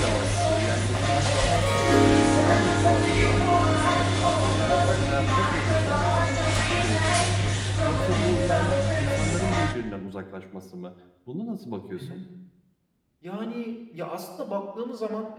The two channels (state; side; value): identical; both; correlation 1.00